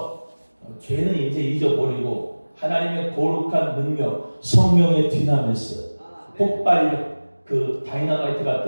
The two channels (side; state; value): both; inverted; correlation -1.00